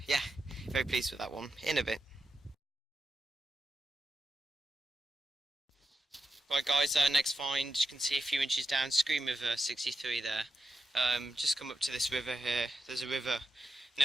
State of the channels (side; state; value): both; normal; correlation 0.88